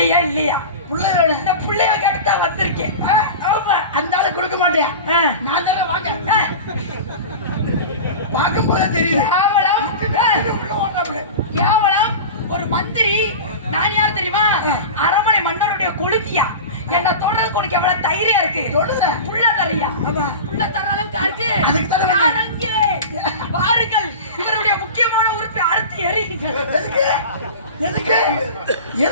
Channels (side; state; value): both; inverted; correlation -0.30